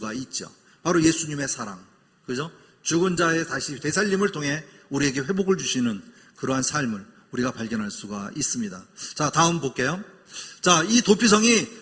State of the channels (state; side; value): identical; both; correlation 1.00